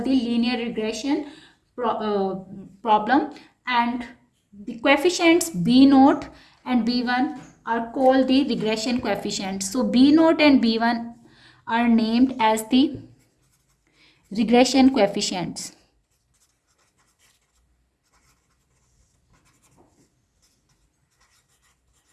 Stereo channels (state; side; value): identical; both; correlation 1.00